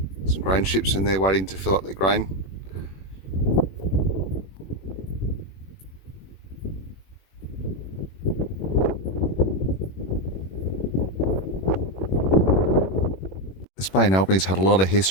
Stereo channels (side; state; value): right; late; 21 ms